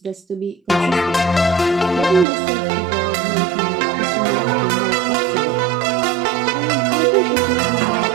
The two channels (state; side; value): drops out; left; at 2.2 s